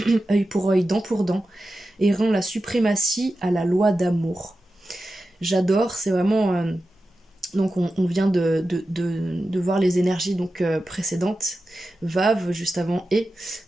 œil pour œil, dent pour dent, et rend la suprématie à la loi d'amour. J'adore, c'est vraiment... Donc on vient de voir les énergies précédentes, Vav juste avant et.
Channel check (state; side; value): normal; both; correlation 0.92